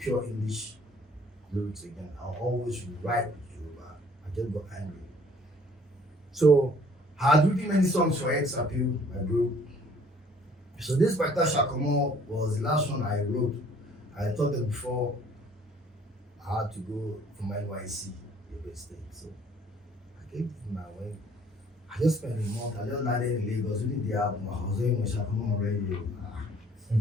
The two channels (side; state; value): both; normal; correlation 0.57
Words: English lyrics again. I'll always write Yoruba. I just got angry. So I had written many songs for X Appeal, my group. So this Baita Shakomo was the last one I wrote. I thought that before I had to go from NYC, Yobe State. So I gave it my way. I just spent a month. I just landed in Lagos. We did the album. I was doing with Shakomo on radio.